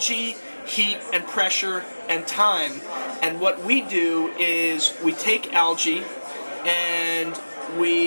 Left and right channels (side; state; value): both; inverted; correlation -1.00